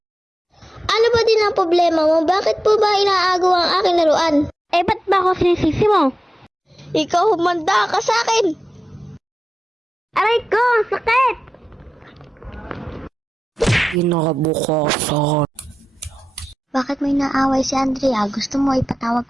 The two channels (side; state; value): both; normal; correlation 0.93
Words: Ano ba din ang problema mo? Bakit po ba inaagaw ang aking laruan? Ba't ba ako sinisisi mo? Ikaw humanda ka sa akin! Aray ko! Sakit! Kinabukasan. Bakit may naaway si Andrea? Gusto mo ipatawag